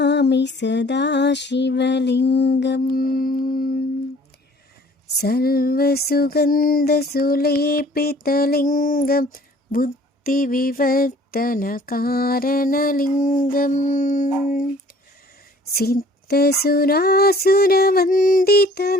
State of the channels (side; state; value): both; normal; correlation 0.53